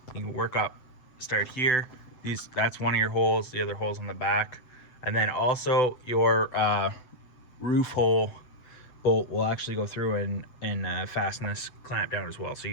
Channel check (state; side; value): late; right; 7.9 ms